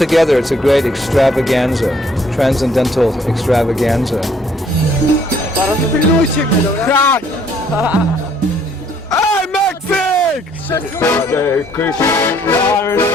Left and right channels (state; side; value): normal; both; correlation 0.63